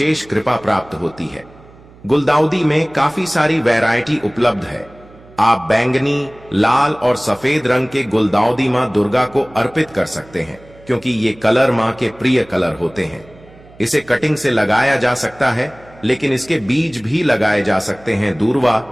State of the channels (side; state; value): right; noise; hum, 24 dB below the sound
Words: कृपा प्राप्त होती है। गुलदाउदी में काफी सारी वैरायटी उपलब्ध है। आप बैंगनी, लाल और सफेद रंग के गुलदाउदी मां दुर्गा को अर्पित कर सकते हैं, क्योंकि ये कलर मां के प्रिय कलर होते हैं। इसे कटिंग से लगाया जा सकता है, लेकिन इसके बीज भी लगाए जा सकते हैं। दूर्वा